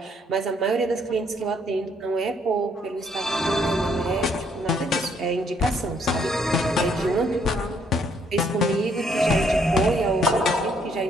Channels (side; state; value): both; normal; correlation 0.68